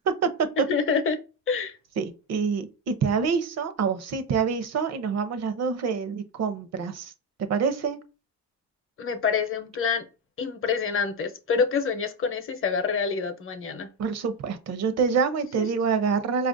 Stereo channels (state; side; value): normal; both; correlation 0.11